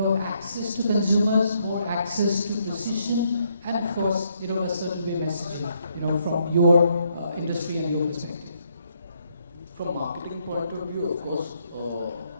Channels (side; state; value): both; inverted; correlation -0.73